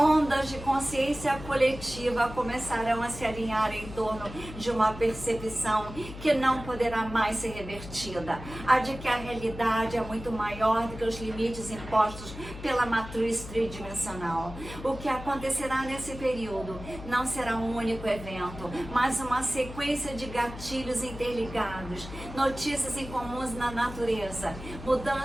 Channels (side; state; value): left; noise; hum, 12 dB below the sound